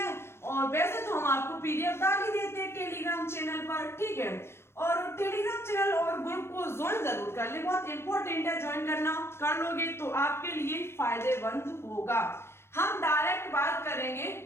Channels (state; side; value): late; right; 0.12 ms